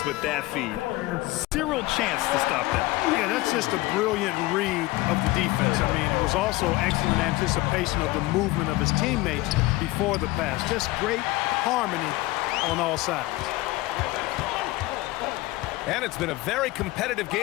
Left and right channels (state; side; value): quieter; right; 19.5 dB